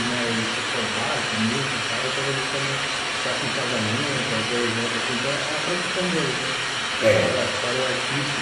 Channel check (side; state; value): both; identical; correlation 1.00